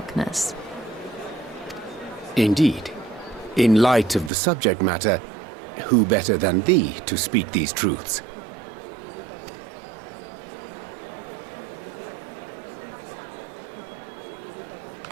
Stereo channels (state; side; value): drops out; left; at 4.3 s